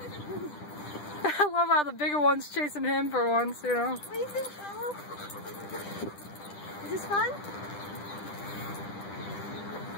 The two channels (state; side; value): late; right; 10 ms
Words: I love how the bigger one's chasing him for once, you know. What do you think, Carlo? Is this fun?